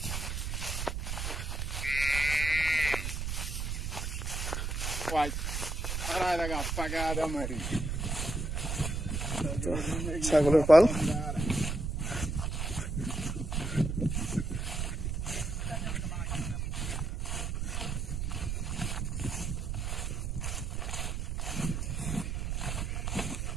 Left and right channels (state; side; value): noise; right; rumble, 2 dB below the sound